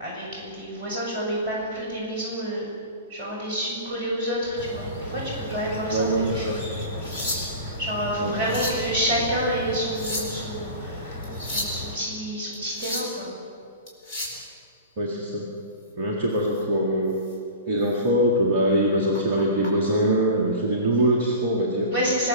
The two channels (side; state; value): both; inverted; correlation -0.34